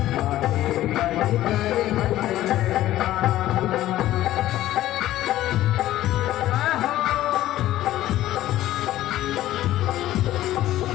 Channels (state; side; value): quieter; right; 14.3 dB